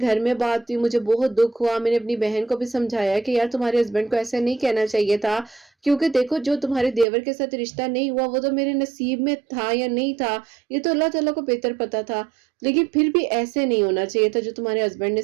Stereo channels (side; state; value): left; drops out; at 7.1 s